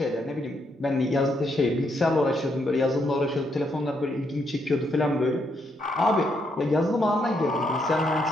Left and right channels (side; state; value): both; normal; correlation 0.77